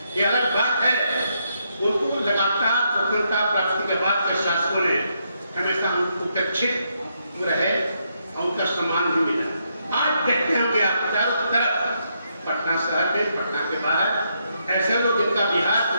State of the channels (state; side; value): inverted; both; correlation -0.78